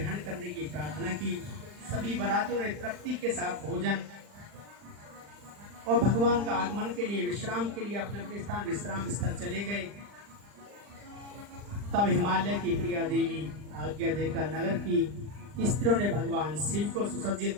करने की प्रार्थना की। सभी बरातियों ने तृप्ति के साथ भोजन और भगवान का आगमन के लिए, विश्राम के लिए अपने अपने स्थान विश्राम स्थल चले गए। तब हिमालय की प्रिया देवी आज्ञा देकर नगर की स्त्रियों ने भगवान शिव को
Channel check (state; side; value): late; left; 40 ms